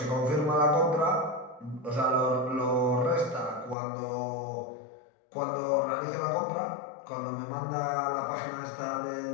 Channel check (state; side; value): drops out; right; at 3.8 s